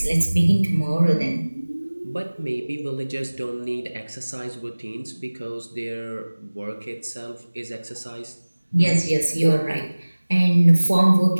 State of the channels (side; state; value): both; inverted; correlation -1.00